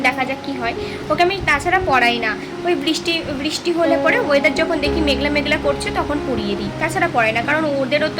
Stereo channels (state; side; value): identical; both; correlation 1.00